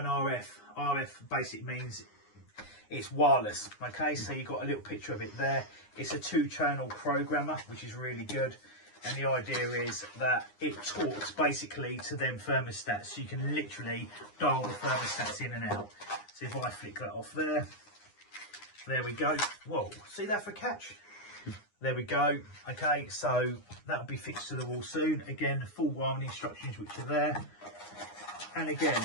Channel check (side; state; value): right; late; 9.8 ms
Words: RF basically means it's wireless. Okay, so you've got a little picture of it there. It's a 2-channel programmer, which is really good. And the idea is that it talks basically to them thermostats. So you can literally dial the thermostats in and out. So if I flick that off there, there we go. Whoa, see that for catch? There we go. Okay, so that'll be fixed to the wall soon. Again, full wiring instructions which are there. And again,